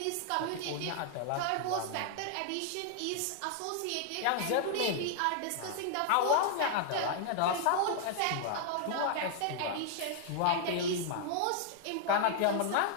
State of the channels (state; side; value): different; both; correlation 0.00